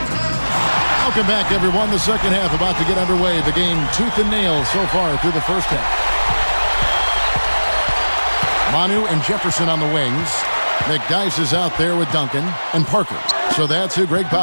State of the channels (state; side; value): inverted; both; correlation -1.00